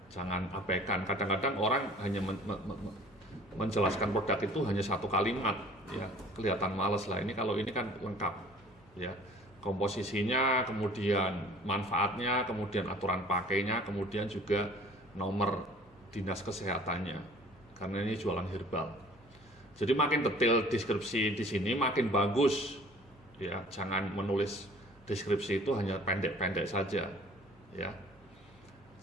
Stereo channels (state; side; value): normal; both; correlation 0.50